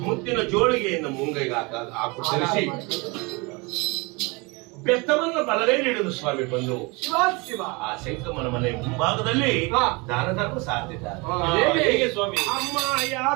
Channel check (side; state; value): left; quieter; 27.3 dB